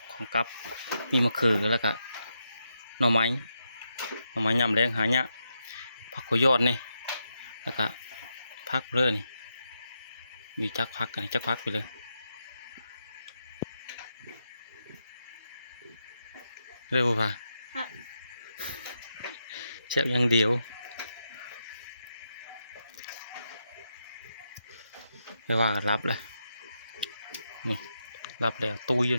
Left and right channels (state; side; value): inverted; both; correlation -0.84